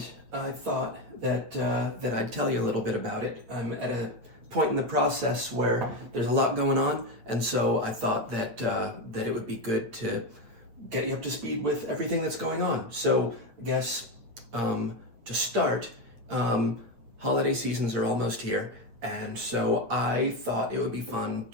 I thought that I'd tell you a little bit about it. I'm at a point in the process where there's a lot going on, and so I thought that it would be good to get you up to speed with everything that's going on. So I guess to start, um, holiday seasons are almost here, and so I thought it would be fun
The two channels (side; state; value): left; late; 8.7 ms